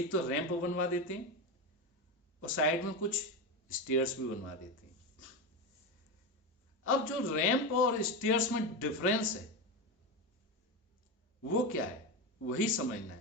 तो रैंप बनवा देते हैं और साइड में कुछ स्टेयर्स भी बनवा देते हैं। अब जो रैंप और स्टेयर्स में डिफरेंस है वो क्या है, वही समझना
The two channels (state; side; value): normal; both; correlation 0.16